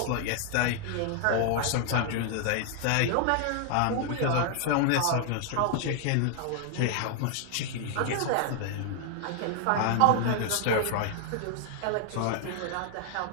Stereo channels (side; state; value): both; different; correlation 0.00